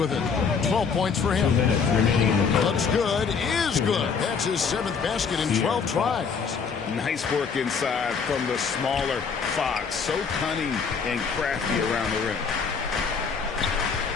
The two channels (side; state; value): right; quieter; 5.8 dB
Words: it. 12 points for him. Looks good. Is good. That's his 7th basket in 12 tries. Nice work inside from the smaller Fox. So cunning and crafty around the rim.